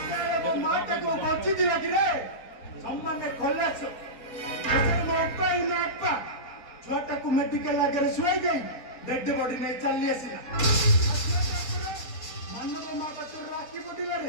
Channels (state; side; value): late; right; 4.3 ms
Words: ମୋ ମାଟାକୁ ବଞ୍ଚିଥିଲା କି ରେ ସମ୍ମାନେ ଖଲାସ ଏସରେ ମୋ ଅପା ଛୁଆଟାକୁ ମେଡିକାଲ ଆଗରେ ଶୁଆଇ ଦେଇ ଡେଡ୍ ବଡି ନେଇ ଚାଲି ଆସିଲା ମାନବ ମହାପାତ୍ର ରାକ୍ଷୀ ପଡ଼ିଲା